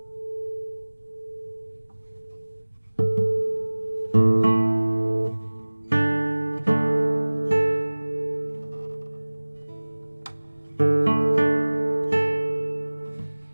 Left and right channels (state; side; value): inverted; both; correlation -1.00